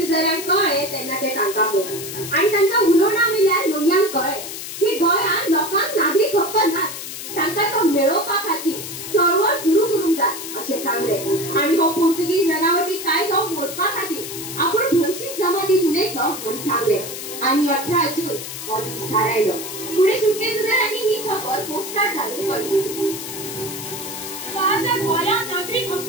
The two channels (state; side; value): noise; left; hiss, 8 dB below the sound